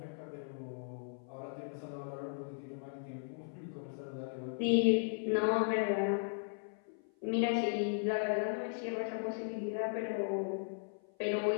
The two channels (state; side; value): silent; right; 53 dB below the other